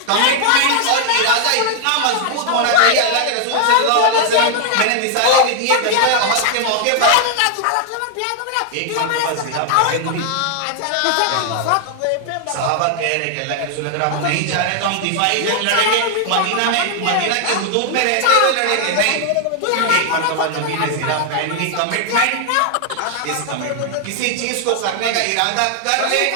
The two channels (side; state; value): both; different; correlation 0.00